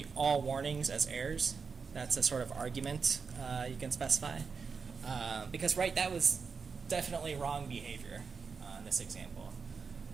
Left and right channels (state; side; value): quieter; left; 5.3 dB